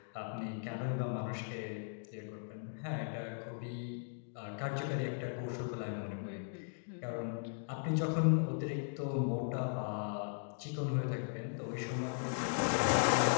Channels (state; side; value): silent; right; digital silence